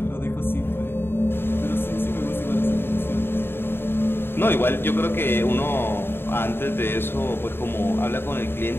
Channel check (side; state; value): right; late; 0.11 ms